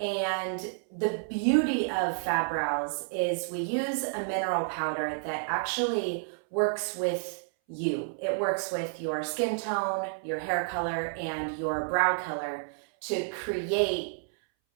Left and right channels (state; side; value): silent; left; 58 dB below the other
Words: the beauty of Fab Brows is we use a mineral powder that actually works with you. It works with your skin tone, your hair color, and your brow color to create